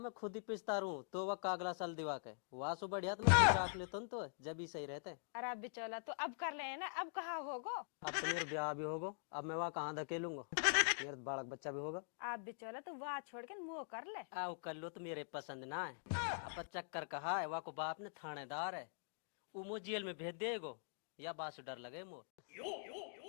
खुद ही पिसता रहूं तो वह कागला साल दिवा के वहां सु बढ़िया तो मैं खुद रख लेता हूं, तो जब ही सही रहते। अरे बिचौला तो अब कर ले ना, अब कहाँ होगो। अब तो मेरा ब्याह भी होगा, अब मैं वहाँ कहाँ धकेलूंगा, मेरा बालक बच्चा भी होगा। आप बिचौला तो वहाँ छोड़ के मुँह कर ले। आओ कर लो तो मेरे पसंद ना है। अब चक्कर कहा है, वहाँ को बाप ने थानेदार है, वो मुझे जेल में भेज देगो या बात से डर लगे मो।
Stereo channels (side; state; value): right; silent; digital silence